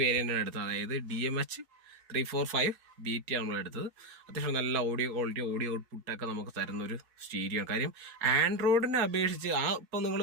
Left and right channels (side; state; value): left; late; 4.3 ms